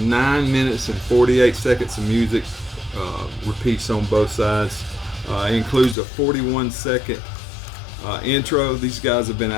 minutes and 48 seconds of music. Repeats on both sides. It includes a 41-second intro. These guys have been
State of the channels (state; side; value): drops out; right; at 6.0 s